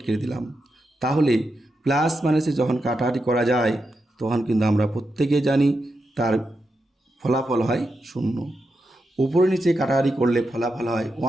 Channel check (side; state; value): both; normal; correlation 0.87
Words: কেটে দিলাম। তাহলে প্লাস মাইনাসে যখন কাটাকাটি করা যায় তখন কিন্তু আমরা প্রত্যেকে জানি তার ফলাফল হয় 0। উপরে নিচে কাটাকাটি করলে ফলাফল হয়